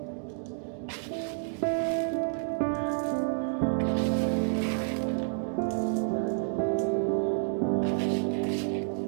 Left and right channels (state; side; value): silent; left; digital silence